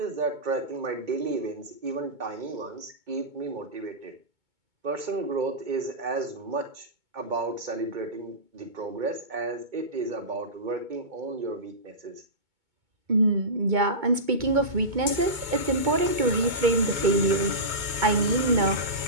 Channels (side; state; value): left; late; 2.2 ms